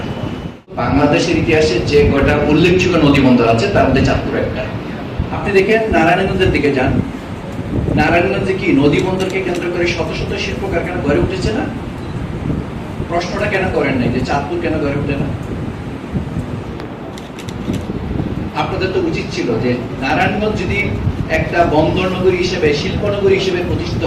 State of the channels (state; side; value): identical; both; correlation 1.00